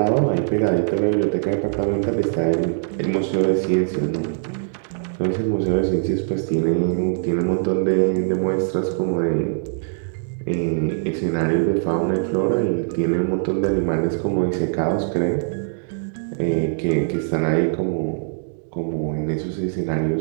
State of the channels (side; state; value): left; silent; digital silence